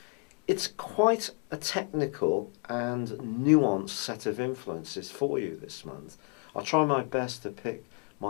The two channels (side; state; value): right; quieter; 33.2 dB